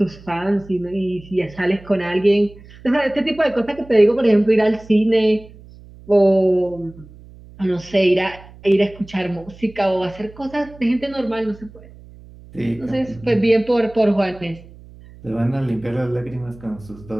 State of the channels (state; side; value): noise; right; hum, 21 dB below the sound